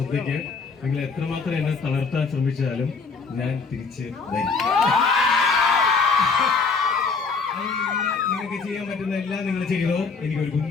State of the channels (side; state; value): right; quieter; 4.7 dB